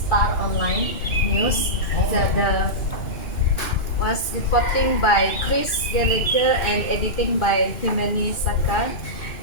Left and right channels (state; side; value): late; right; 2.5 ms